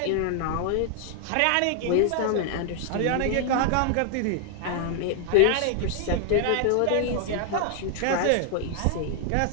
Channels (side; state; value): both; different; correlation 0.00